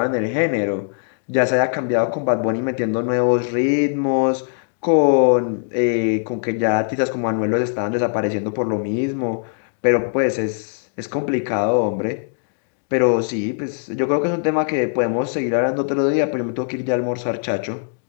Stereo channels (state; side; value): silent; right; digital silence